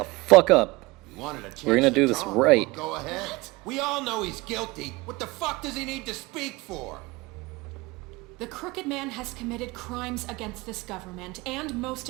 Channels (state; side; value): quieter; left; 22.8 dB